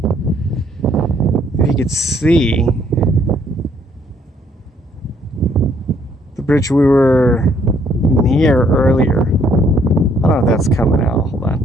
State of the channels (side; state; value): both; normal; correlation 0.66